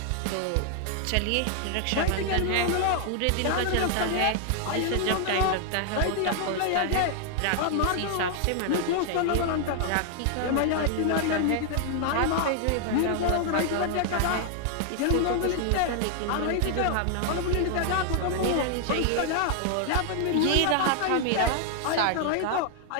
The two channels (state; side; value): different; both; correlation 0.00